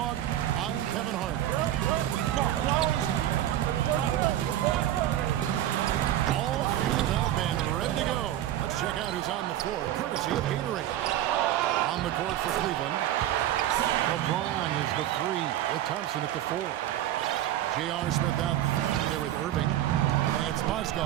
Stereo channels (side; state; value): left; quieter; 12.7 dB